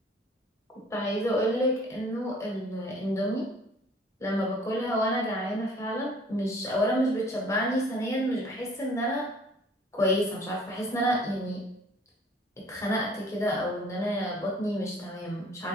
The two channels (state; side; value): normal; both; correlation 0.53